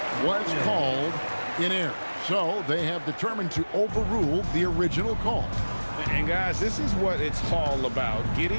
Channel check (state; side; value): inverted; both; correlation -1.00